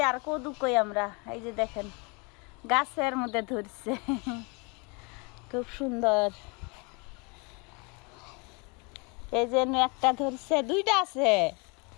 আর কদু কই আমরা। এই যে দেখেন গাছের মধ্যে ধরছে খুব সুন্দর। এই যে একটা ধরছে, দুইটা আছে।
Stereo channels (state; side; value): quieter; right; 31.0 dB